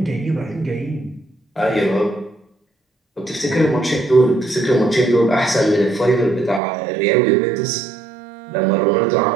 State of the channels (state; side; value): drops out; left; at 6.6 s